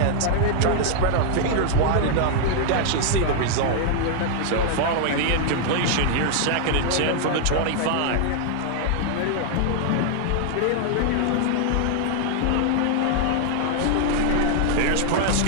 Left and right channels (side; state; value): both; different; correlation 0.00